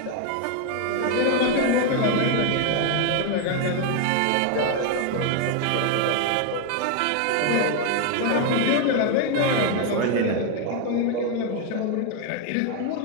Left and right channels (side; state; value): both; different; correlation 0.01